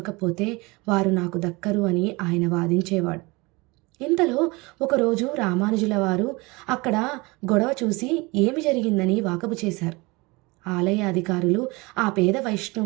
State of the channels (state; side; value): quieter; left; 24.8 dB